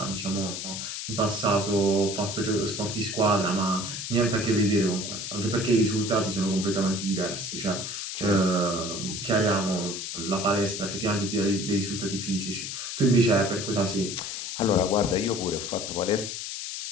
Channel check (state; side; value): noise; left; hiss, 6 dB below the sound